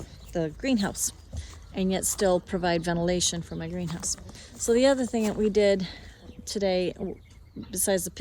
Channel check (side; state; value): both; identical; correlation 1.00